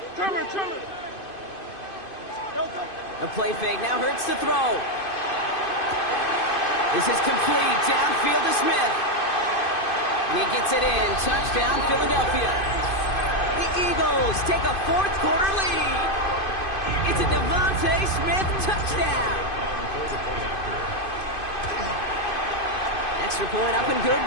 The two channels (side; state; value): right; late; 2.5 ms